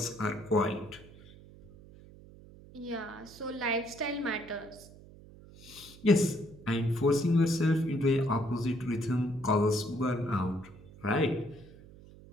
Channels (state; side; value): noise; right; hum, 20 dB below the sound